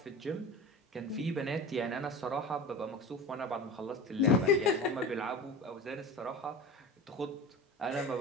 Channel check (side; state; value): both; normal; correlation 0.32